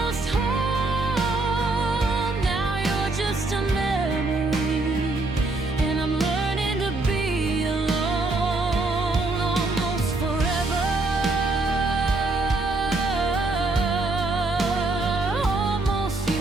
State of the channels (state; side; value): quieter; left; 3.2 dB